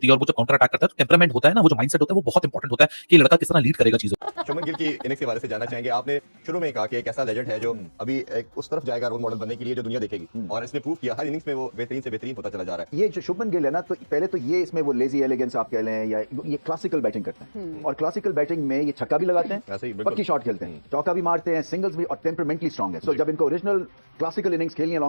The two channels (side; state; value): both; inverted; correlation -1.00